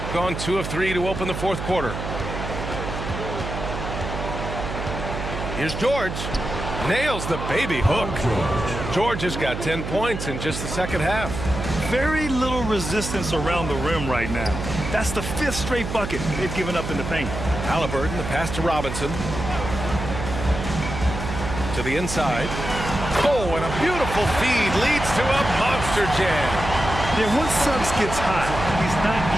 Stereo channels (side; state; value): right; noise; hum, 6 dB below the sound